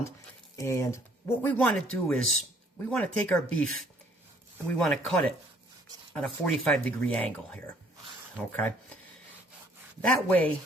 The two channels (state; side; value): normal; both; correlation 0.61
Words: And what we want to do is, we want to take our beef and we want to cut it at a 45-degree angle here. Okay? That way,